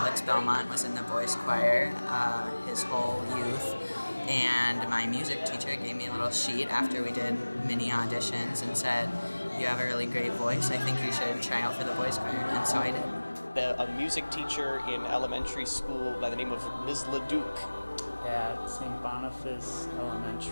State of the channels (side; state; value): both; inverted; correlation -1.00